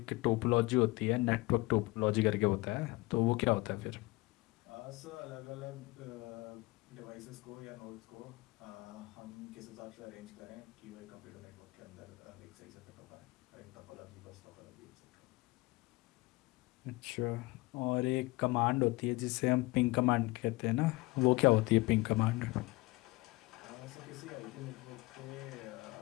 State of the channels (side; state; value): right; quieter; 22.1 dB